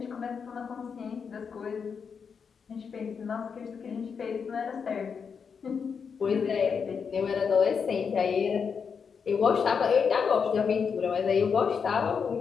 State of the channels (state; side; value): quieter; right; 6.2 dB